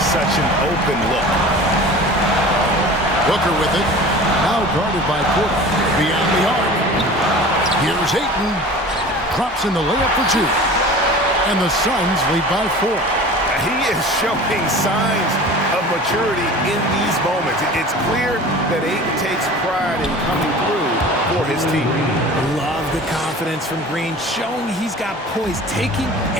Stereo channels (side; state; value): both; normal; correlation 0.40